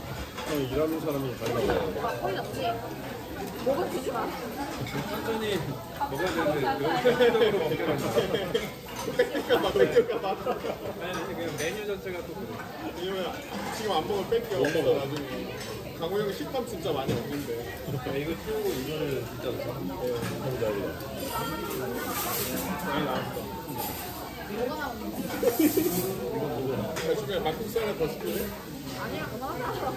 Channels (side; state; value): both; identical; correlation 1.00